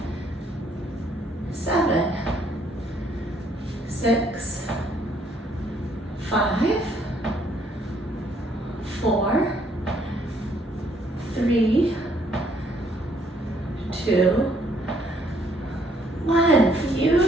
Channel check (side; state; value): both; normal; correlation 0.67